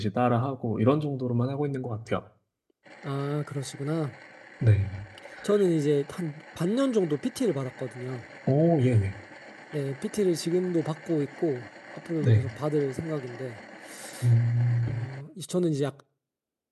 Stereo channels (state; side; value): identical; both; correlation 1.00